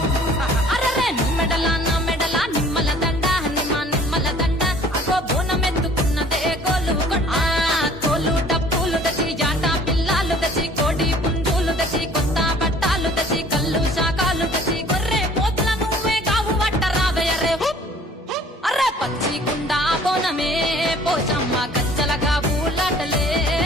అరరే మెడల నిమ్మల దండ నిమ్మల దండ అగో బోనమెత్తుకున్నదే గోలుకొండ తోలు డప్పులు దచి జాట పిల్లాలు దచి కోడి పుంజులు దచి కొత్త బట్టాలు దచి కళ్ళు శాకాలు దచి గొర్రె పోతుల నువ్వే కావు వట్ట రావయ్యరే అరే పచ్చి కుండా బోనమే పోషమ్మ గచ్చలగా ఊలాటలే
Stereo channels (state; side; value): normal; both; correlation 0.53